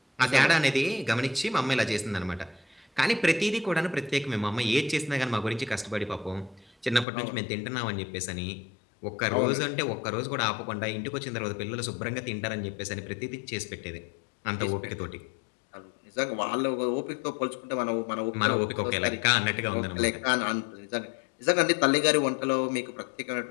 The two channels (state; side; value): drops out; right; at 7.1 s